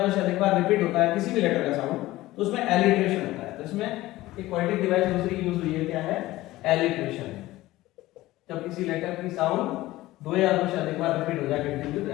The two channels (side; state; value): right; quieter; 17.2 dB